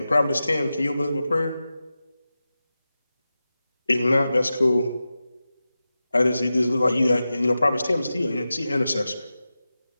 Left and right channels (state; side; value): inverted; both; correlation -0.93